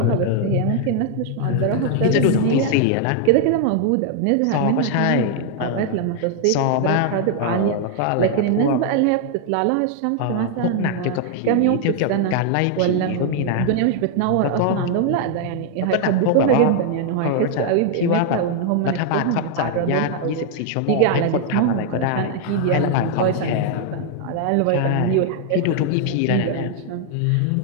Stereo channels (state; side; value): different; both; correlation 0.00